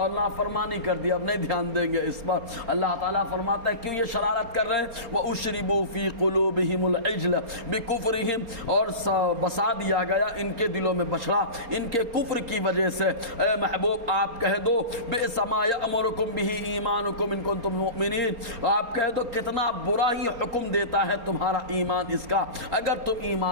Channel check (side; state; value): left; late; 4.3 ms